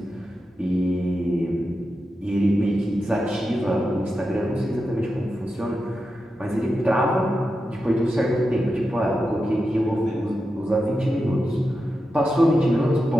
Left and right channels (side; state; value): both; normal; correlation 0.89